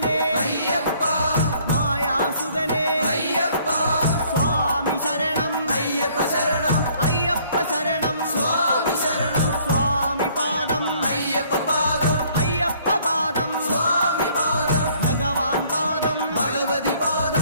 అయ్యప్ప మాయాసుదనే అయ్యప్ప స్వామి శరణం అయ్యప్ప శరణం అయ్యప్ప శరణం స్వామి శరణం స్వామి పాదం అయ్యప్ప పాదం అయ్యప్ప పాదం స్వామి పాదం భగవాన్ పాదం భగవతి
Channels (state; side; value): inverted; both; correlation -0.61